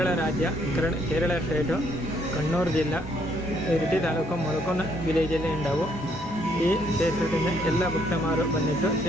ರಾಜ್ಯ, ಕೇರಳ ಸ್ಟೇಟು, ಕಣ್ಣೂರು ಜಿಲ್ಲಾ, ಇರಿಟಿ ತಾಲೂಕು, ಮೊಳಕುಂದ ವಿಲೇಜಲ್ಲಿ ഉണ്ടാവും. ഈ ക്ഷേത്രത്തിന് എല്ലാ ഭക്തന്മാരും വന്നിട്ട്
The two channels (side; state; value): both; normal; correlation 0.69